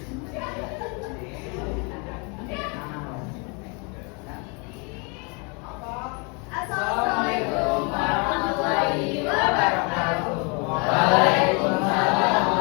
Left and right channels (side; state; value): right; quieter; 33.0 dB